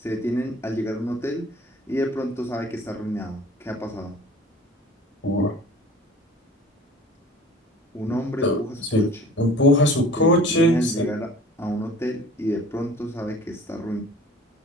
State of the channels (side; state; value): both; normal; correlation 0.46